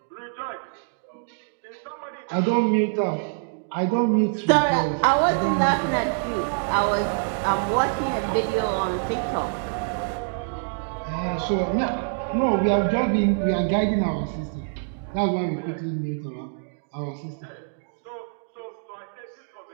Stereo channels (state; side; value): silent; left; digital silence